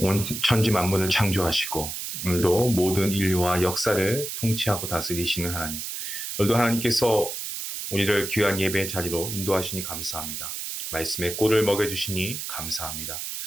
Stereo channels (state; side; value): noise; right; hiss, 6 dB below the sound